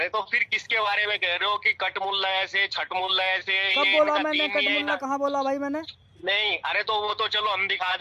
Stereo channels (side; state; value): both; identical; correlation 1.00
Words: तो फिर किसके बारे में कह रहे हो कि कट मुल्ला ऐसे, छठ मुल्ला ऐसे? कब ये बोला इनका मैंने तीन ये कटमुल्ला? कहाँ बोला भाई मैंने? नहीं, अरे तो वो तो चलो हम दिखा